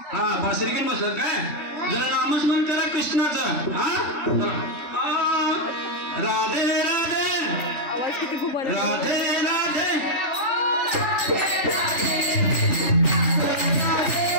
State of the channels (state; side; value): late; right; 3.4 ms